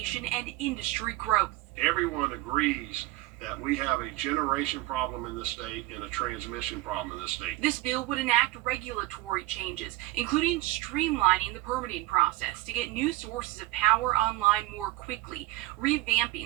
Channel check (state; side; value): quieter; left; 18.0 dB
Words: and industry growth. Everyone agrees that we have a generation problem in the state and a transmission problem in the state. This bill would enact regulatory changes, including streamlining the permitting process to get new sources of power online more quickly. quickly,